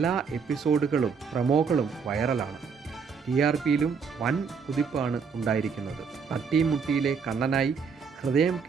എപ്പിസോഡുകളും പ്രമോകളും വൈറലാണ്. TRPയിലും വൻ കുതിപ്പാണ് ഉണ്ടായിരിക്കുന്നത്. തട്ടിയും മുട്ടിയിലെ കണ്ണനായി ഹൃദയം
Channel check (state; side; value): quieter; left; 5.8 dB